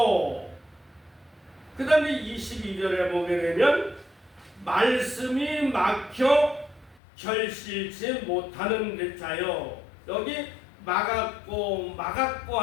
그 다음에 22절에 보게 되면 말씀이 막혀 결실치 못하는 자요. 여기 막았고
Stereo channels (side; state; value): right; drops out; at 7.0 s